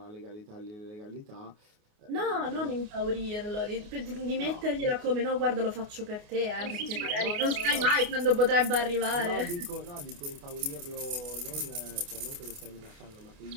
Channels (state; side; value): late; left; 28 ms